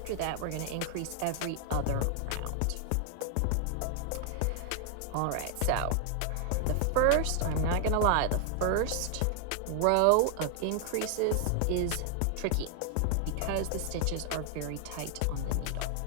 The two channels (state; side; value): different; both; correlation 0.00